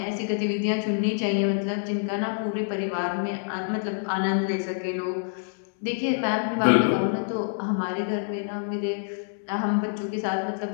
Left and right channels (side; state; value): right; silent; digital silence